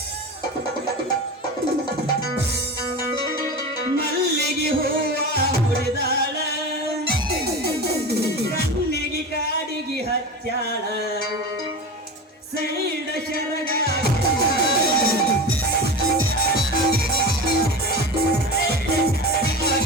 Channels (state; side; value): normal; both; correlation 0.28